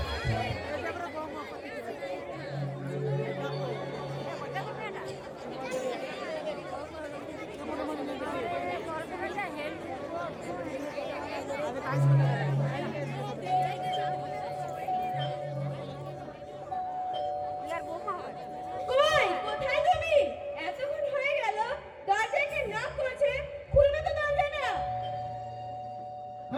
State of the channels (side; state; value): both; identical; correlation 1.00